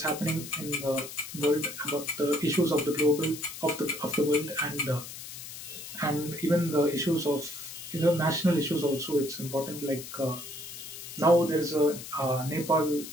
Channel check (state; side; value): noise; left; hiss, 11 dB below the sound